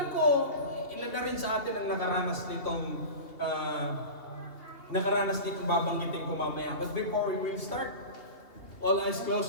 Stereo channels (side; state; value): right; late; 2.6 ms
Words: ko, ilan na rin sa atin ang nakaranas nitong babanggitin ko mamaya. But before we will start, all eyes